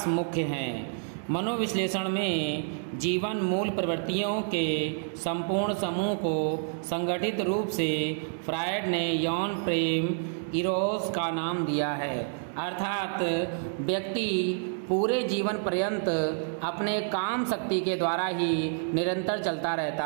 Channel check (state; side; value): silent; left; digital silence